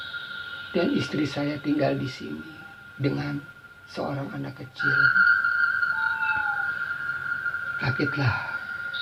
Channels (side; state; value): both; identical; correlation 1.00